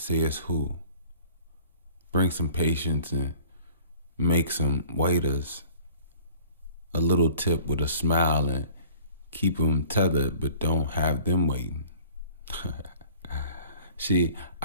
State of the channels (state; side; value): inverted; both; correlation -0.49